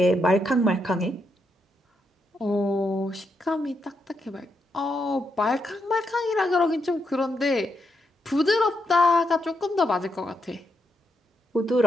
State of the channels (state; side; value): normal; both; correlation 0.81